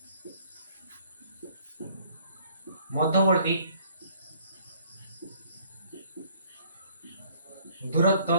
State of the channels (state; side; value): inverted; both; correlation -0.60